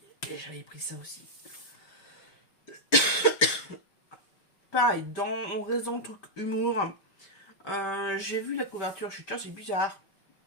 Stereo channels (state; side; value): late; right; 5.3 ms